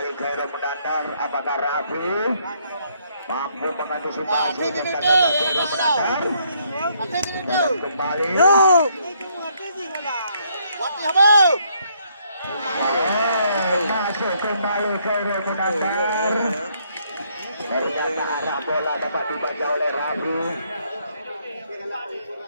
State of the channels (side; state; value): both; inverted; correlation -0.70